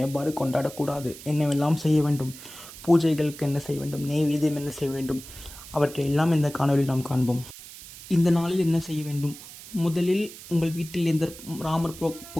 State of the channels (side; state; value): right; noise; hiss, 16 dB below the sound